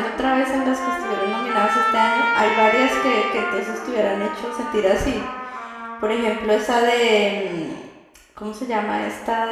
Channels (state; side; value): identical; both; correlation 1.00